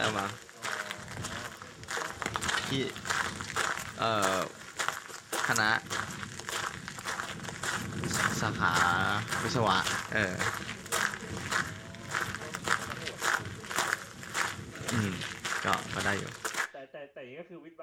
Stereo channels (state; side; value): identical; both; correlation 1.00